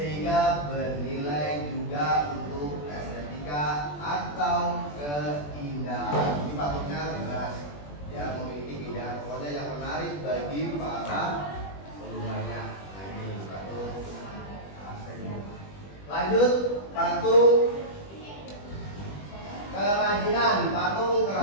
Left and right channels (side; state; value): right; late; 20 ms